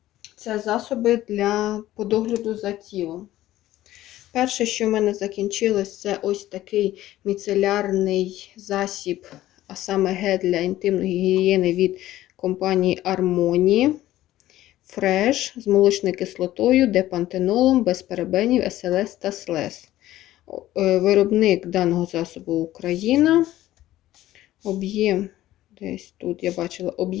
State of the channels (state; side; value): quieter; right; 14.6 dB